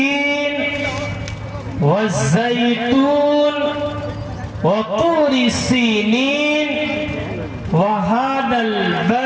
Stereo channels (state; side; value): identical; both; correlation 1.00